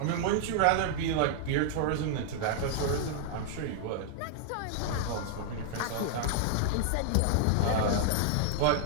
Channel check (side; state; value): both; different; correlation -0.01